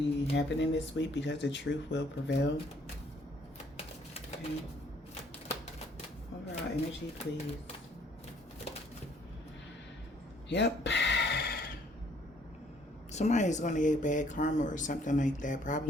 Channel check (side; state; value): both; normal; correlation 0.63